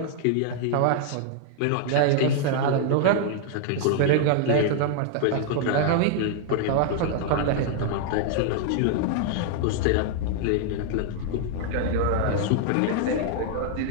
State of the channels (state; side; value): different; both; correlation 0.00